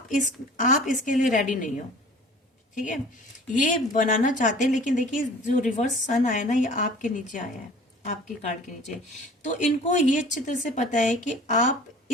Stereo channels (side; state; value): both; normal; correlation 0.46